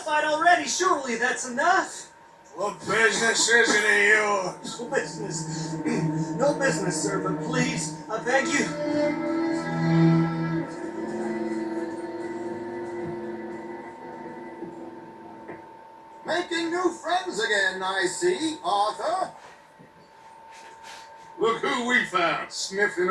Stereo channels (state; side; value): identical; both; correlation 1.00